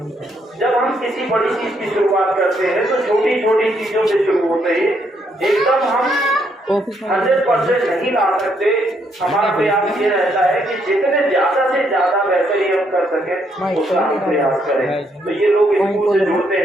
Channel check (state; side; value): normal; both; correlation 0.73